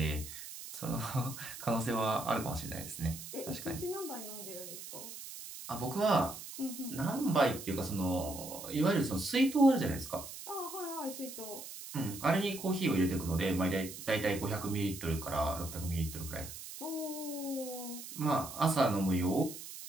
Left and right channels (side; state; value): right; noise; hiss, 11 dB below the sound